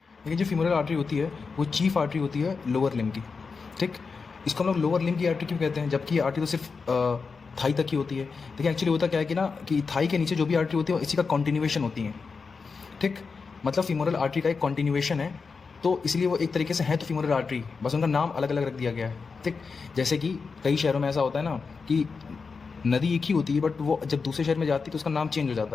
लेकिन जो femoral artery होती है वो चीफ आर्टरी होती है लोअर लिम्ब की, ठीक। इसको हम लोग लोअर लिम्ब की आर्टरी क्यों कहते हैं, जबकि ये आर्टरी तो सिर्फ थाई तक की होती है। देखिए एक्चुअली होता क्या है कि ना कि थाई के नीचे जो भी आर्टरी होती है वो इसी का कॉन्टिन्यूएशन होती है, ठीक। मतलब फीमोरल आर्टरी का एक कॉन्टिन्यूएशन है, तो इसलिए वो एक तरीके से है तो फीमोरल आर्टरी, बस उनका नाम अलग अलग रख दिया गया है, ठीक। जैसे कि कई शहरों में ऐसा होता है ना कि नदी एक ही होती है, बट वो जब दूसरे शहर में जाती है तो उसका नाम चेंज हो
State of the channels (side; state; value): right; quieter; 4.9 dB